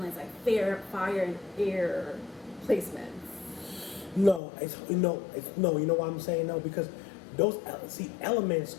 like fire and air placements. No, no. You know why I'm saying no? Because those elements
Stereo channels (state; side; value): drops out; right; at 4.4 s